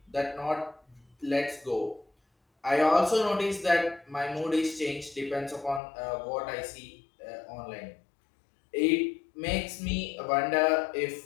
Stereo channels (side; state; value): right; drops out; at 5.8 s